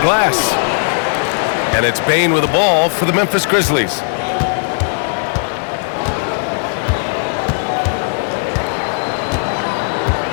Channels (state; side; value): silent; right; digital silence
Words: glass. And it's Payne with the ball for the Memphis Grizzlies.